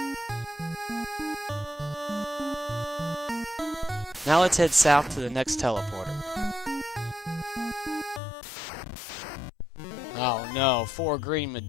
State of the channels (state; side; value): drops out; right; at 8.2 s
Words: Now let's head south to the next teleporter. Oh no, 4 green